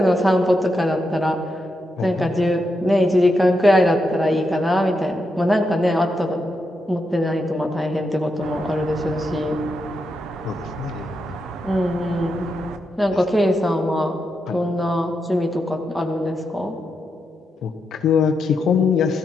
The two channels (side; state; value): both; normal; correlation 0.84